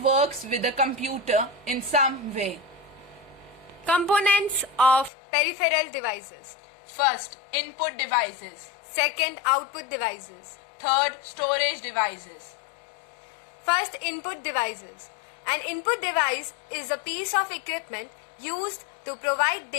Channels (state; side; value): drops out; right; at 5.1 s